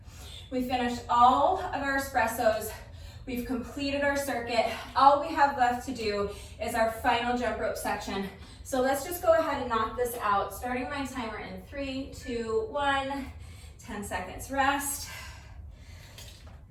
We finished all of our espressos. We've completed our circuit. All we have left to do is our final jump rope section. So let's just go ahead and knock this out. Starting my timer in 3, 2, 1. 10 seconds rest.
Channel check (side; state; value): both; identical; correlation 1.00